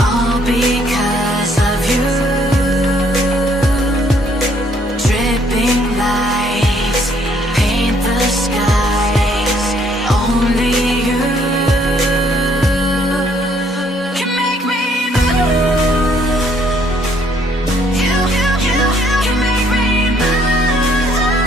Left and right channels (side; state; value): both; normal; correlation 0.66